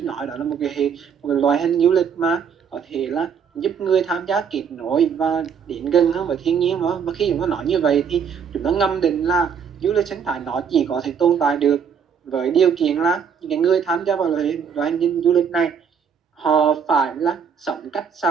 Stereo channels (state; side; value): quieter; left; 7.0 dB